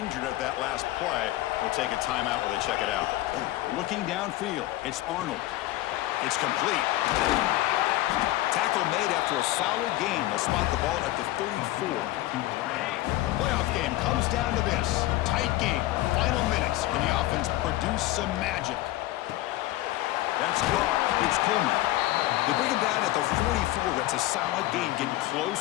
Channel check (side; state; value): right; quieter; 16.6 dB